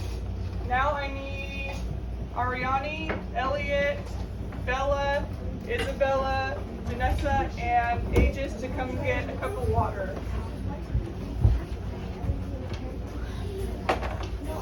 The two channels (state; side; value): identical; both; correlation 1.00